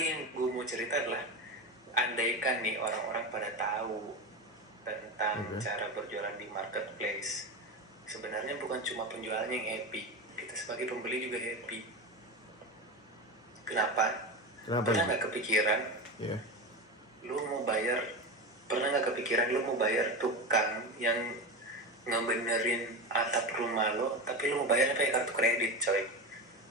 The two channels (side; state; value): both; normal; correlation 0.21